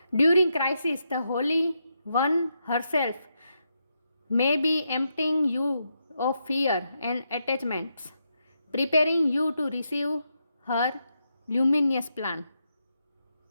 During crisis, the Holy One herself may be emptying you of fear and attachments, preparing you to receive her luminous plan.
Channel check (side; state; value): both; inverted; correlation -0.83